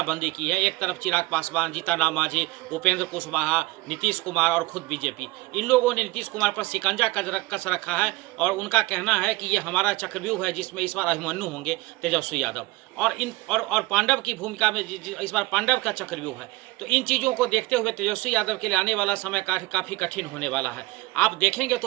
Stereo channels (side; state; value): left; quieter; 21.3 dB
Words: की है, एक तरफ चिराग पासवान, जीतनराम मांझी, उपेंद्र कुशवाहा, नीतीश कुमार और खुद बीजेपी, इन लोगों ने नीतीश कुमार पर शिकंजा कस रखा है और उनका कहना है कि ये हमारा चक्रव्यूह है जिसमें इस बार अभिमन्यु होंगे तेजस्वी यादव और पांडव की भूमिका में इस बार पांडव का चक्रव्यूह है। तो इन चीज़ों को देखते हुए तेजस्वी यादव के लिए आने वाला समय काफ़ी कठिन होने वाला है। आप देखेंगे